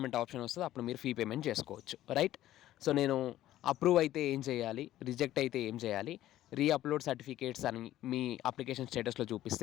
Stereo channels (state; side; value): quieter; right; 13.8 dB